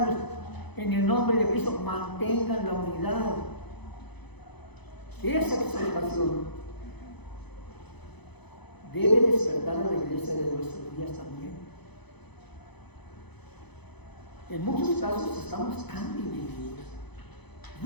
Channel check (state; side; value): late; right; 0.98 ms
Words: en el nombre de Cristo mantengan la unidad. Esa exhortación debe despertar a la iglesia de nuestros días también. En muchos casos estamos tan divididos.